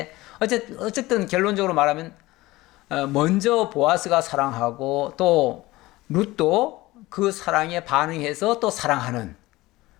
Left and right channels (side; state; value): right; quieter; 19.1 dB